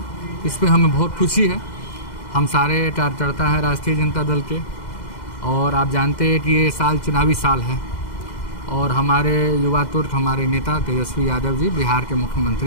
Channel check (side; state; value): right; late; 2.0 ms